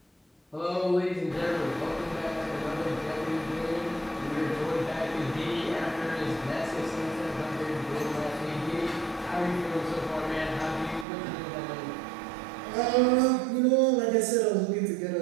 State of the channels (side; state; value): left; drops out; at 11.1 s